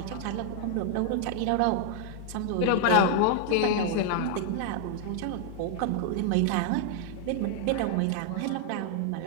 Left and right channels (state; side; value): different; both; correlation 0.00